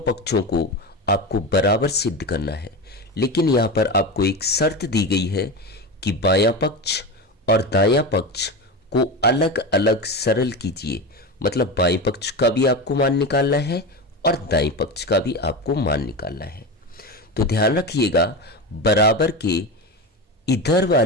पक्षों को आपको बराबर सिद्ध करना है, लेकिन यहाँ पर आपको एक शर्त दी गई है कि बायां पक्ष और दायां पक्ष को अलग अलग सरल कीजिए। मतलब बाएं पक्ष का भी आपको मान निकालना है और दाएं पक्ष का भी आपको मान निकालना है। तो ध्यान रखिएगा, बराबर के इधर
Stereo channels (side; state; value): both; normal; correlation 0.22